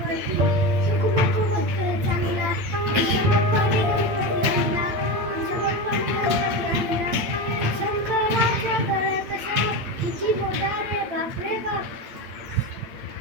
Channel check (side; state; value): left; late; 8.7 ms